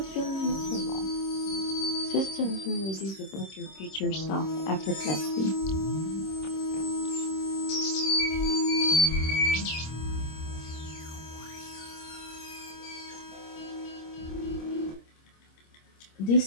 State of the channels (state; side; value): late; right; 26 ms